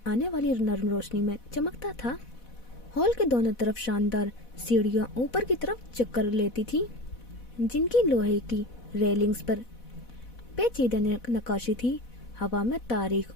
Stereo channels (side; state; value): right; late; 4.1 ms